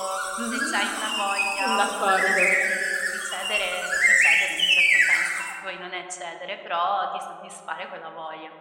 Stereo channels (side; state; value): both; identical; correlation 1.00